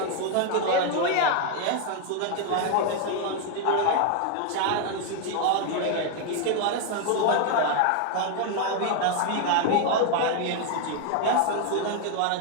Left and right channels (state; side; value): different; both; correlation 0.00